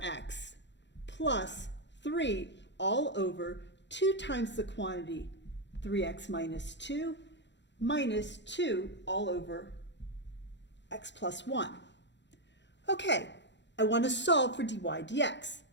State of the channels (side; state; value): right; late; 0.52 ms